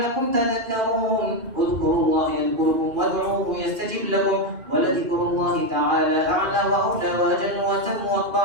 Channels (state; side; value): late; left; 2.5 ms